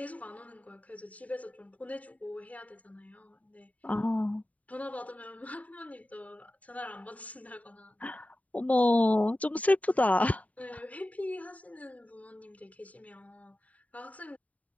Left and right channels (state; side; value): late; right; 0.070 ms